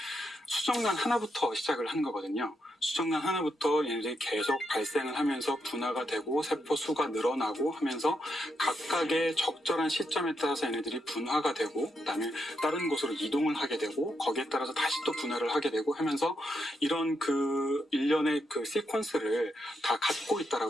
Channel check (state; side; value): normal; both; correlation 0.81